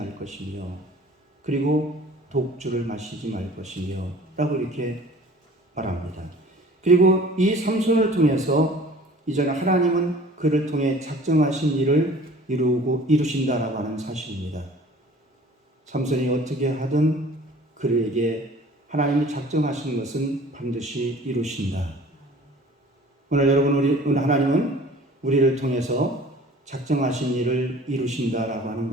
것이며, 그리고 독주를 마시지 말 것이며, 라고 이렇게 말합니다. 그리고 이 삼손을 통해서 이제는 하나님은 그를 통해 작정하신 일을 이루신다라고 하는 사실입니다. 삼손이 어떻게 하든 그에게 하나님이 작정하신 것은 반드시 이루신다. 오늘 오늘 하나님은 우리를 통해서 작정하신 일을 이루신다라고 하는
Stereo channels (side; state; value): both; normal; correlation 0.48